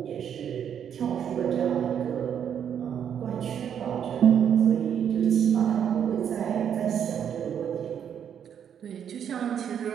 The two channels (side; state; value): left; quieter; 8.6 dB